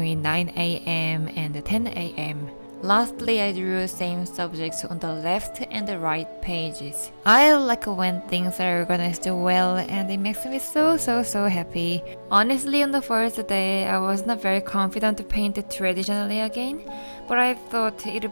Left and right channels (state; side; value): inverted; both; correlation -1.00